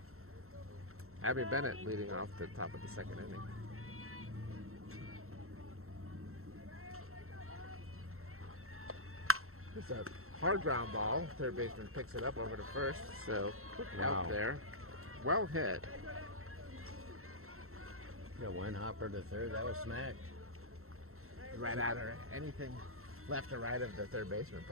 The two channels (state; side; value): late; left; 0.63 ms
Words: Abby Bennett leading off the top of the second inning. It's a hard ground ball. Third baseman picks it up over to first. So quick out there. Well hit. Yeah, one hopper to third. That was smacked. right at her. Anything left or right of the third baseman